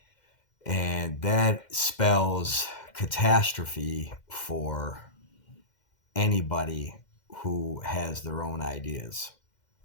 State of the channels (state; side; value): late; right; 2.1 ms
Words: And that spells catastrophe for anybody who has their own ideas